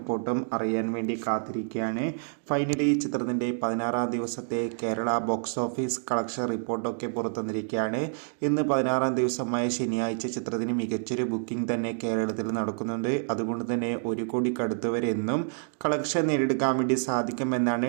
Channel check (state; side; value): silent; left; digital silence